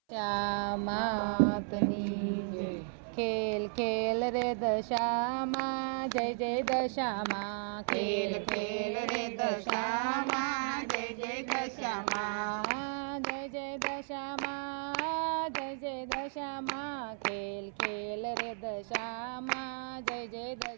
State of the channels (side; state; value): left; silent; 55 dB below the other